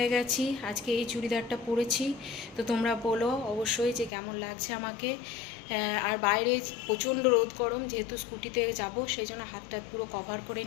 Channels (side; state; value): right; drops out; at 4.1 s